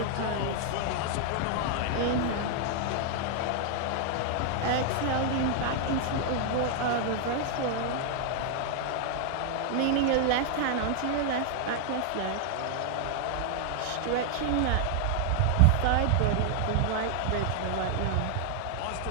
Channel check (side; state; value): both; different; correlation 0.00